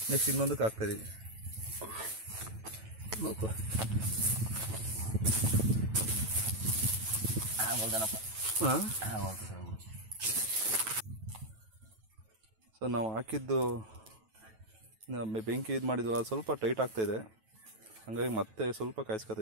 ನೆಕ್ಸ್ಟ್ ಇನ್ನೊಂದಕ್ಕೆ ಹಾಕ್ತಾಯಿದ್ದೀವಿ. ಹಾಂ, ಸೊ ನಾವು ಹಾಕಿದ್ದು ಬೆಂಕಿ ಇದು ಮಾಡಿದ್ವಲ್ಲ ಸ್ವಲ್ಪ ಟೈಟ್ ಆಗ್ತಾಯಿದೆ, ಹಾಗಾಗಿ ಮತ್ತೆ ಸ್ವಲ್ಪ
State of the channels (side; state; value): left; late; 9.1 ms